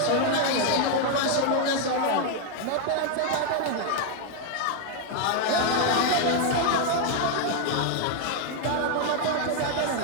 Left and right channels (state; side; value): different; both; correlation 0.00